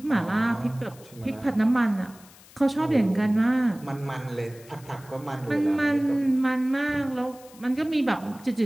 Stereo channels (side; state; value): left; noise; hiss, 23 dB below the sound